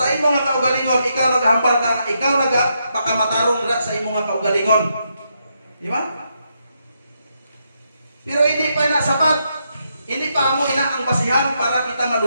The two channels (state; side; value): inverted; both; correlation -0.80